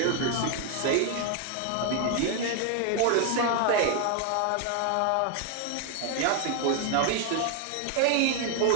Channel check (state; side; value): different; both; correlation 0.00